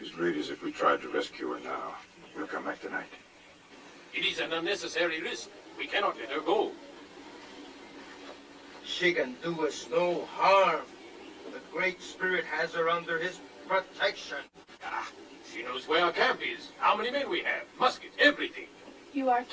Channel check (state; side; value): identical; both; correlation 1.00